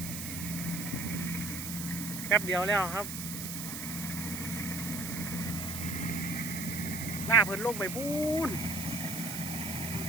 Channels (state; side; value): noise; right; hiss, 6 dB below the sound